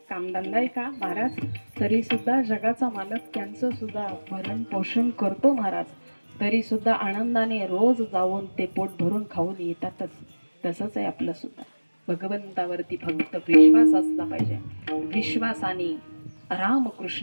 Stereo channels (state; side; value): inverted; both; correlation -1.00